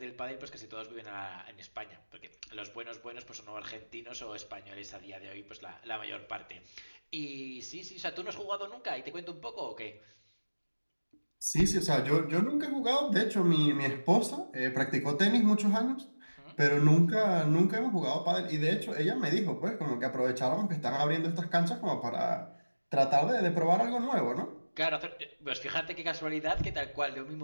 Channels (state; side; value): inverted; both; correlation -1.00